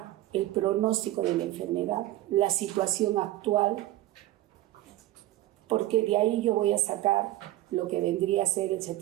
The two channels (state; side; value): quieter; left; 15.5 dB